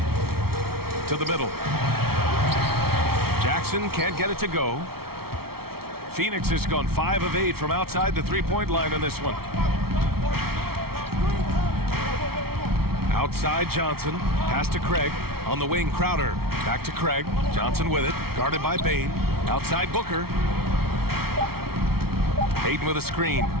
To the middle. Jackson can't get it to go. Phoenix has gone 5 of 8 from outside the three-point line in this one. Outside Johnson. Pass to Craig. On the wing, Crowder. Back to Craig. Johnson with it. Guarded by Bain. Outside Booker. Aiden with a screen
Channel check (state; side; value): late; left; 0.94 ms